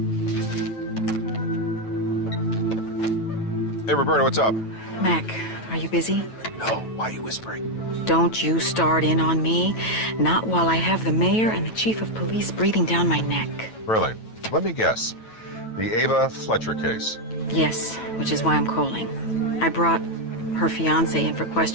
Hey, Roberta, what's up? Mac, are you busy? No, why are you whispering? Don't you start in on me. Not while I have the mayor and the chief of police breathing down my neck. Really? Let me guess. The Ava Fletcher case. Yes, which is why I'm calling. I brought her fiancé in for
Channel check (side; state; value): right; late; 9.1 ms